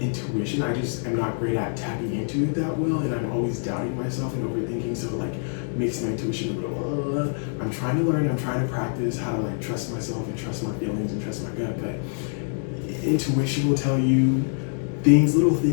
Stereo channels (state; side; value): silent; right; 61 dB below the other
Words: intuition. I just am not great at tapping into it that well, and I'm always doubting myself and overthinking, so, like, makes my intuition a little, I'm trying to learn, I'm trying to practice how to, like, trust myself and trust my feelings and trust my gut, but intuition will tell you little